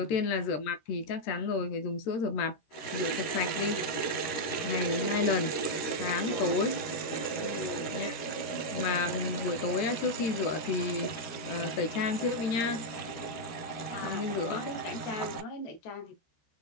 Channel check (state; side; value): late; right; 13 ms